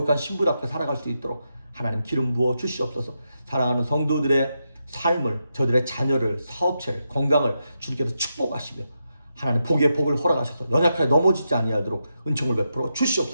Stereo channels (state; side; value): inverted; both; correlation -0.86